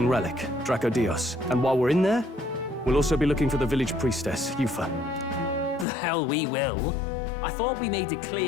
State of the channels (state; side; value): drops out; right; at 5.9 s